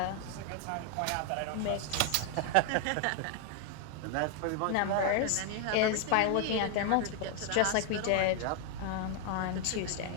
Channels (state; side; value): different; both; correlation 0.00